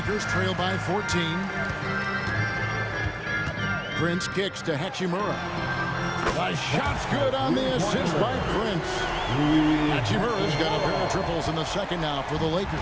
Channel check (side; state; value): both; identical; correlation 1.00